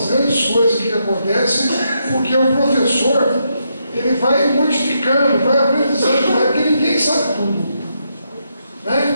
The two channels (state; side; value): inverted; both; correlation -0.80